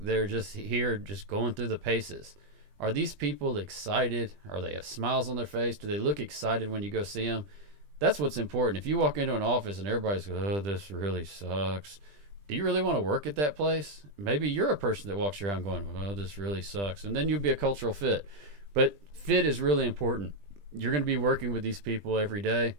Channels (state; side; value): late; left; 20 ms